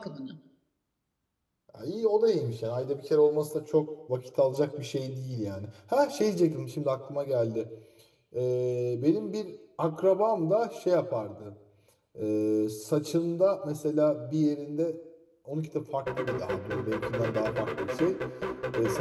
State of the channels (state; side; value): identical; both; correlation 1.00